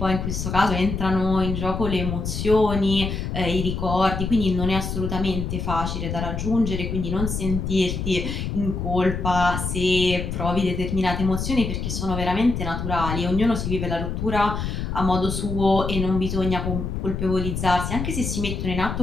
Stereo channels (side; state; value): left; noise; rumble, 3 dB below the sound